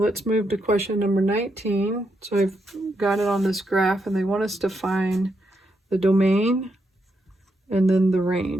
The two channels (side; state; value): both; normal; correlation 0.81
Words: move to question number 19. So I've got it on this graph, and they want us to find the domain and then the